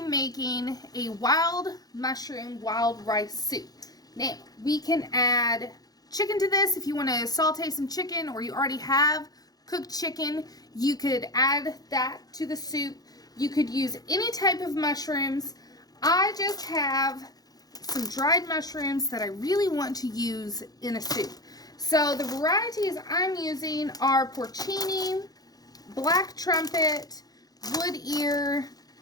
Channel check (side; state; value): right; late; 0.19 ms